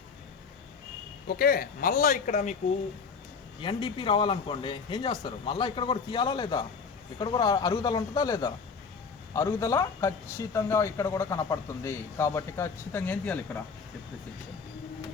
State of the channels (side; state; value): right; quieter; 5.4 dB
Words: Okay. మళ్ళీ ఇక్కడ మీకు ఎన్డిపి రావాలనుకోండి, ఏం చేస్తారు? మళ్ళీ ఇక్కడ కూడా తీయాలా లేదా? ఇక్కడ కూడా అరుగుదల ఉంటుందా లేదా? అరుగుదల ఖచ్చితంగా ఇక్కడ కూడా కనపడుతుంది. కాబట్టి ఖచ్చితంగా ఏం తీయాలి? ఇక్కడ డిప్రిసియేషన్.